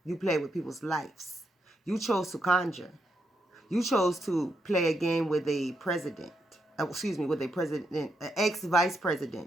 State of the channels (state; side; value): normal; both; correlation 0.81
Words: you play with people's lives. You chose to conjure. You chose to play a game with a president. With a president, an ex-vice